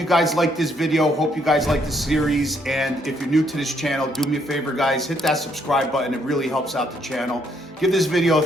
guys like this video, hope you guys like this series, and if you're new to this channel, do me a favor guys, hit that subscribe button. It really helps out the channel. Give this video a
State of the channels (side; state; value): both; normal; correlation 0.71